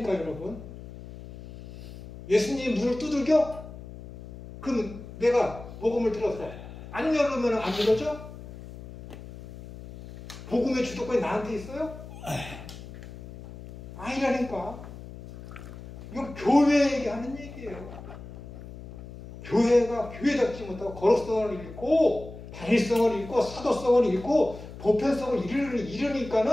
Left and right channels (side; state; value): left; noise; hum, 14 dB below the sound